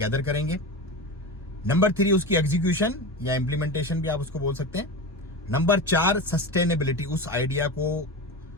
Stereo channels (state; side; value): normal; both; correlation 0.24